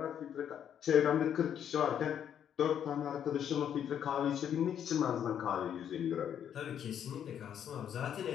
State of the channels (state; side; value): quieter; right; 9.2 dB